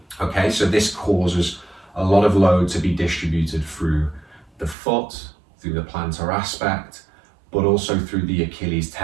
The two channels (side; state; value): left; drops out; at 4.8 s